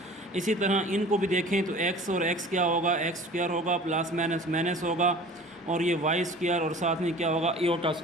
इसी तरह इनको भी देखें तो x और x क्या होगा? x स्क्वायर होगा, प्लस माइनस माइनस होगा, और ये y स्क्वायर और साथ में क्या होगा? इयोटा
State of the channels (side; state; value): both; normal; correlation 0.43